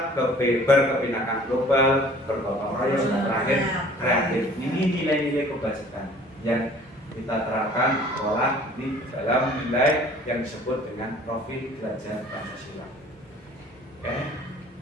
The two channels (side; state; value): both; normal; correlation 0.51